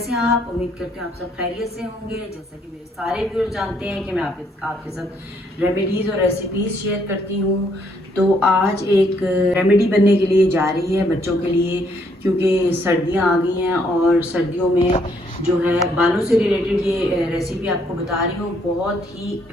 हैं आप? उम्मीद करते हैं आप सब खैरियत से होंगे। जैसा कि मेरे सारे व्यूअर्स जानते हैं कि मैं आपके साथ रेमेडीज़ और रेसिपीज़ शेयर करती हूँ। तो आज एक रेमेडी बनने के लिए जा रही है बच्चों के लिए, क्योंकि सर्दियाँ आ गई हैं और सर्दियों में जो है बालों से रिलेटेड ये रेसिपी आपको बता रही हूँ। बहुत ही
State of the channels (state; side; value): normal; both; correlation 0.70